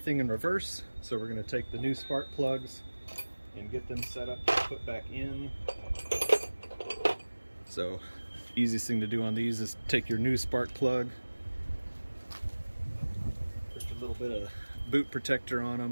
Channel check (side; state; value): both; inverted; correlation -1.00